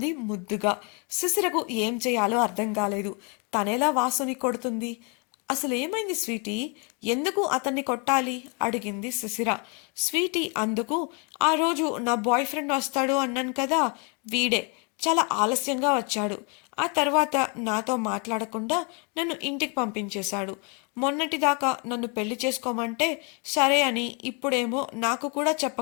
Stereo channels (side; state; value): right; quieter; 33.9 dB